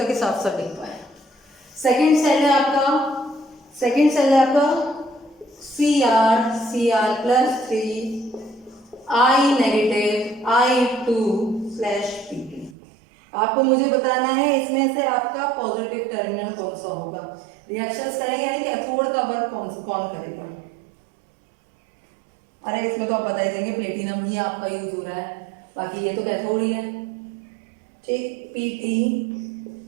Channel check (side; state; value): left; drops out; at 12.8 s